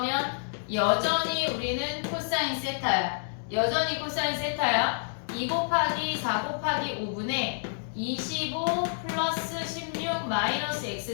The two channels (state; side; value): silent; right; digital silence